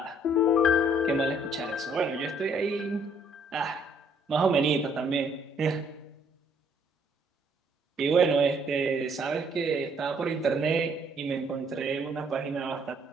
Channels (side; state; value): both; normal; correlation 0.65